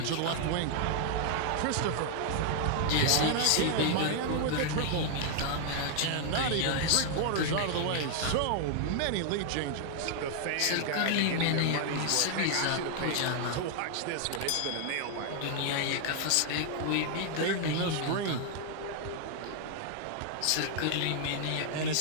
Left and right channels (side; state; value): both; different; correlation 0.00